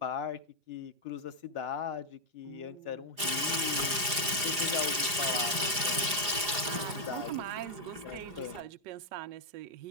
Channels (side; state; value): left; late; 4.9 ms